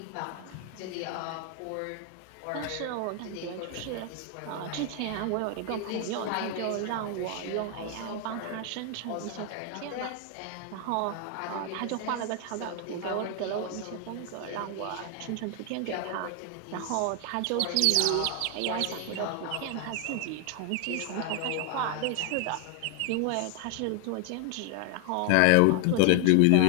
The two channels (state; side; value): different; both; correlation 0.00